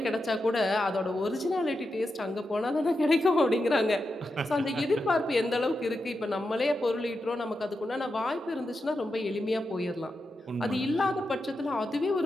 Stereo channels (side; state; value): both; normal; correlation 0.88